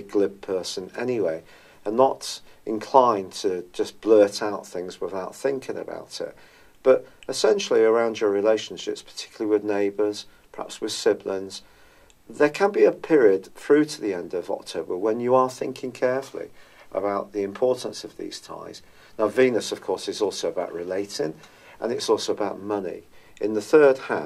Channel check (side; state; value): both; identical; correlation 1.00